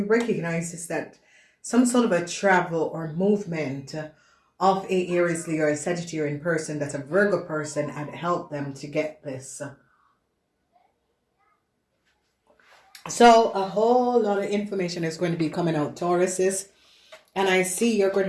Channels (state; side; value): identical; both; correlation 1.00